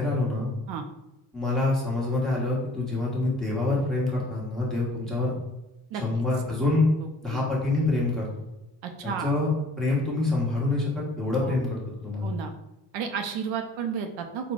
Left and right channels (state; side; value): normal; both; correlation 0.55